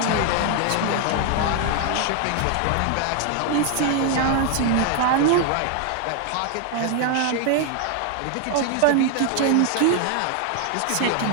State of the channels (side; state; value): both; different; correlation 0.00